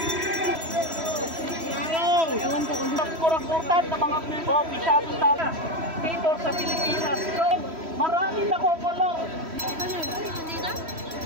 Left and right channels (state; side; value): late; left; 3.1 ms